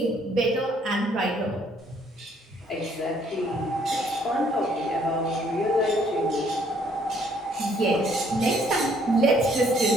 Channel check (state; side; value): normal; both; correlation 0.64